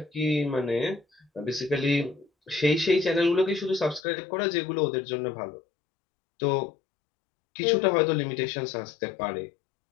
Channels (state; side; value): drops out; right; at 4.0 s